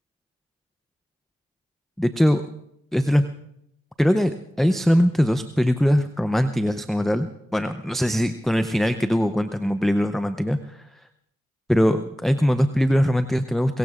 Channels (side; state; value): both; normal; correlation 0.97